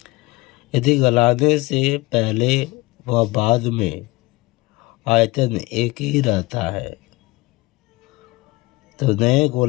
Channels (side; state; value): right; quieter; 21.5 dB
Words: यदि गलाने से पहले व बाद में आयतन एक ही रहता है तो नए